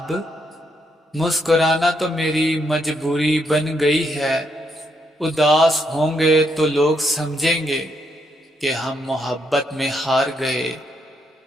مسکرانا تو میری مجبوری بن گئی ہے۔ اداس ہوں گے تو لوگ سمجھیں گے کہ ہم محبت میں ہار گئے۔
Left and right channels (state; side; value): normal; both; correlation 0.77